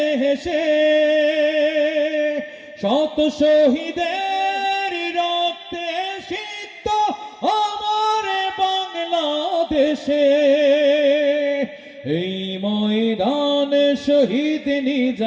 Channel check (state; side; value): identical; both; correlation 1.00